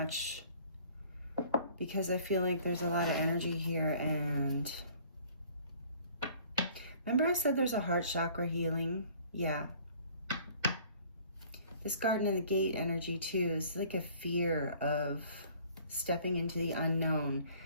because I feel like there's a lot of energy here. And remember I said there's a heart chakra healing? Yeah. This Garden and the Gate energy too is like a fear of stepping into the unknown.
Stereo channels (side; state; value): both; inverted; correlation -0.54